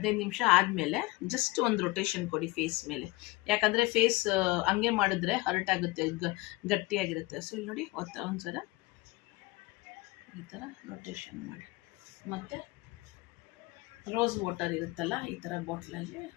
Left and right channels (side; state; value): right; quieter; 22.1 dB